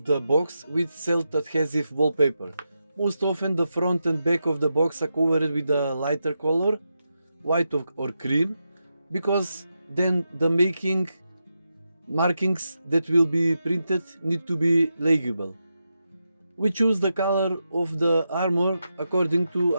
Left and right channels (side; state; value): both; inverted; correlation -0.87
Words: the box with self-adhesive wallpaper. Most often the front and back of the box are covered with a lighter color, white or cream, because then the markings that will be printed need to be legible. We choose the color of the armor according to